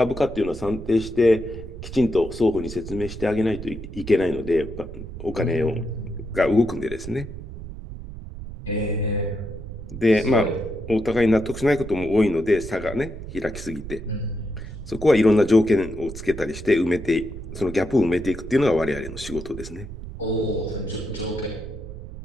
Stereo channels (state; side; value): noise; right; rumble, 11 dB below the sound